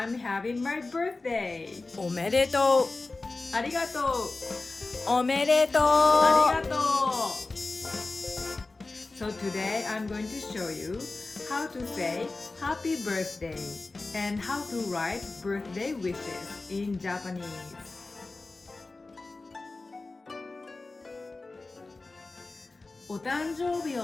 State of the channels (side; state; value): right; quieter; 3.4 dB